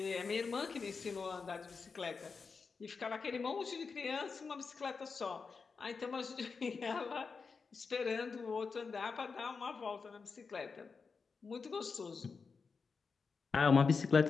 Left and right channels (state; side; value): quieter; right; 5.0 dB